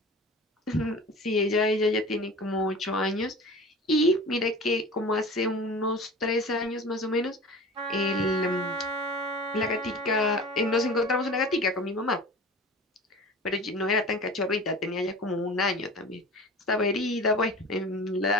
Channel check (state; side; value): normal; both; correlation 0.37